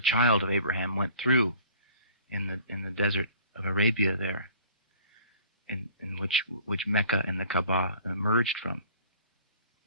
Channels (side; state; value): both; inverted; correlation -0.49